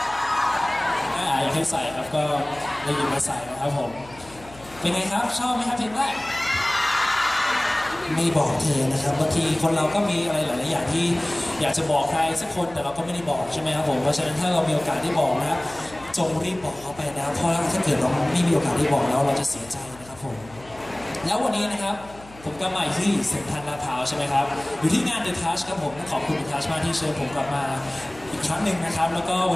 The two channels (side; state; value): left; noise; hum, 21 dB below the sound